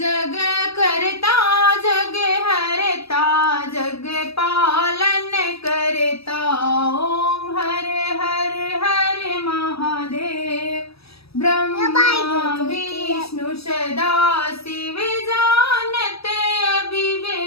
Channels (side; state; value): right; late; 0.77 ms